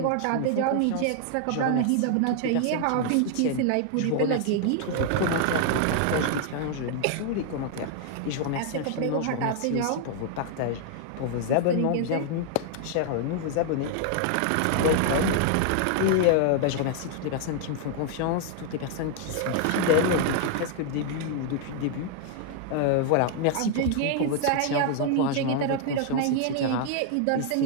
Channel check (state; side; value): different; both; correlation 0.00